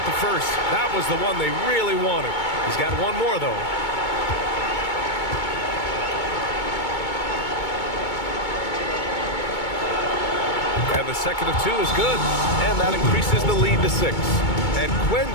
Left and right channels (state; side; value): late; right; 2.2 ms